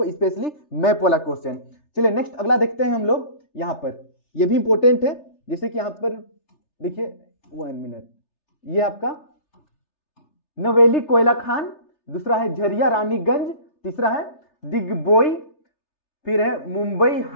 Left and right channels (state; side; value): late; right; 3.3 ms